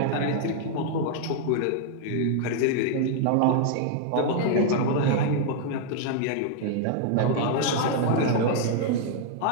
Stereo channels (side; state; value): both; different; correlation 0.00